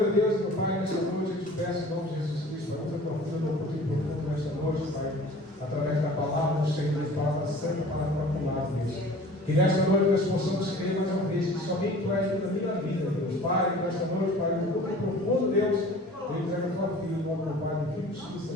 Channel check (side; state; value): both; normal; correlation 0.45